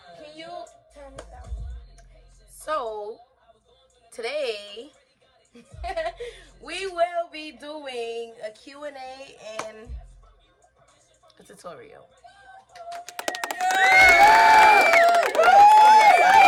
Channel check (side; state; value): both; identical; correlation 1.00